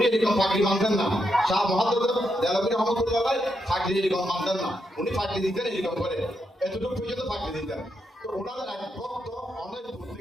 এরকম পাগড়ি মানতেন না। শাহ মুহাদ্দিস দেহলভী রহমাতুল্লাহ আলাইহি পাগড়ি এরকম মানতেন না। উনি পাগড়ি দিতেন এরকম করে, এতটুকু পর্যন্ত পাগড়ি দিতেন। তো ওনাদের এক ভক্ত অনেক দূর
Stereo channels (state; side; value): normal; both; correlation 0.82